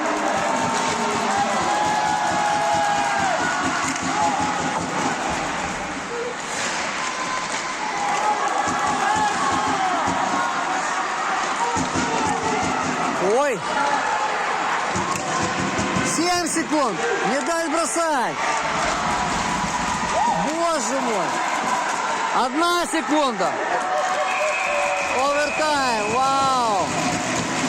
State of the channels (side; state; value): both; identical; correlation 1.00